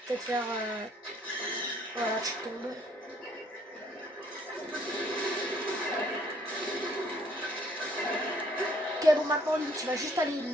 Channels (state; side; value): normal; both; correlation 0.63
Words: Faut peut-être faire... Voilà, tu tombes. Ok, bon, maintenant, lui, tu vas juste aller